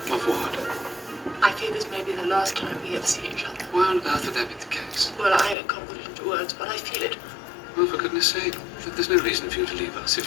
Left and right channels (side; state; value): right; drops out; at 5.6 s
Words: Of what? I fear this may be the last time we ever see each other. Why on earth would that be the case? Well, I can't put it into words, but I feel it. Well, for goodness sake, there's no reason for you to leave us